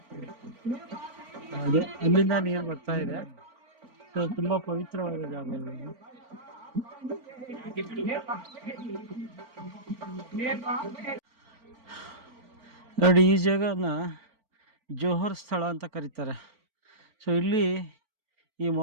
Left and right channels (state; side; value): late; left; 4.4 ms